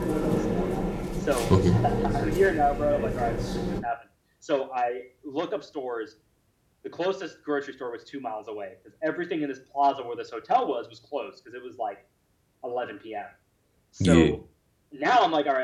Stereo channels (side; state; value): both; identical; correlation 1.00